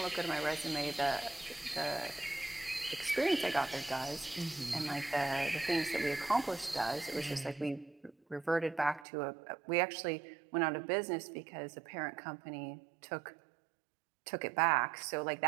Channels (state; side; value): drops out; left; at 9.1 s